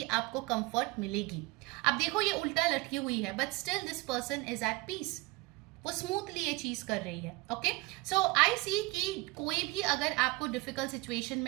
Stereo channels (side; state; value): left; quieter; 23.1 dB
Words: आपको कंफर्ट मिलेगी। अब देखो ये उल्टा लटकी हुई है but still this person is at peace, वो स्मूथली ये चीज कर रही है। ओके सो आई सी कि कोई भी अगर आपको डिफिकल्ट सिचुएशन